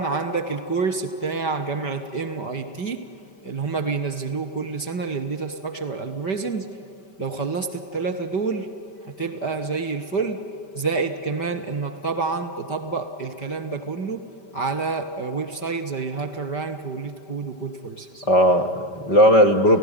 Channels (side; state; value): right; late; 5.1 ms